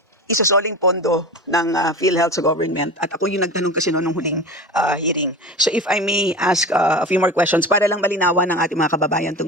isasoling pondo ng PhilHealth sa government. At ako yung nagtanong kasi noong huling hearing. So if I may ask a few more questions para lang malinawan ng ating mga kababayan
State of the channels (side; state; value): both; normal; correlation 0.30